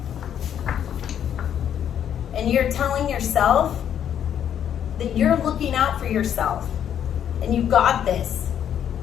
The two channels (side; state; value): right; quieter; 9.4 dB